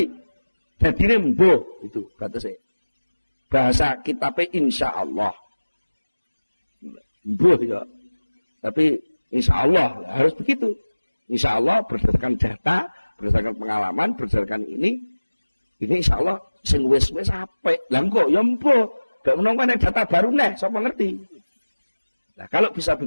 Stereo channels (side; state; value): both; inverted; correlation -1.00